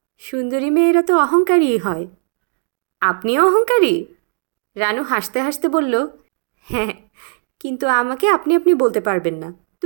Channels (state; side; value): silent; left; digital silence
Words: সুন্দরী মেয়েরা তো অহংকারীই হয়। আপনিও অহংকারী? রানু হাসতে হাসতে বলল, হ্যাঁ, কিন্তু আমাকে আপনি আপনি বলতে পারবেন না,